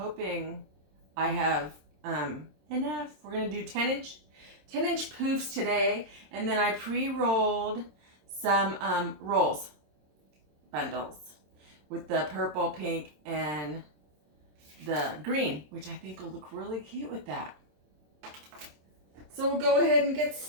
I have enough. We're going to do 10-inch poofs today, and then I pre-rolled some bundles with the purple, pink, and the green, which I think will look really cute with that. So we'll go ahead and get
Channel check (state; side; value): late; left; 27 ms